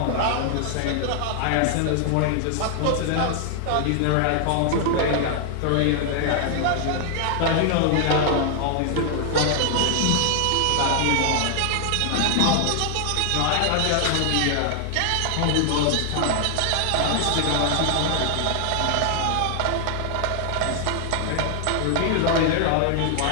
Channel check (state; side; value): different; both; correlation 0.00